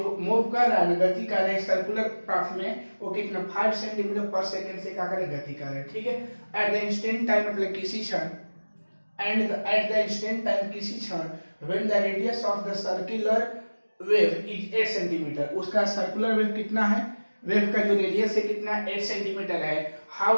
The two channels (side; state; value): both; inverted; correlation -1.00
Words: मूव कर रहा है, गति कर रहे हैं सर्कुलर पाथ में, वो कितना 5 सेंटीमीटर पर सेकंड से क्या करे, गति कर रहे हैं। ठीक है, एट द इंस्टेंट टाइम मतलब किसी क्षण, and at the instant time किसी क्षण, when the radius of the circular wave is 8 centimetre, उसका सर्कुलर वेव कितना है, वेव का जो रेडियस है कितना, 8 सेंटीमीटर है।